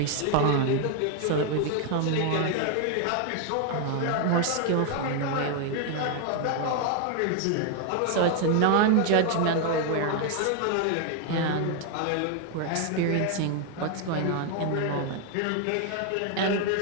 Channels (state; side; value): different; both; correlation 0.01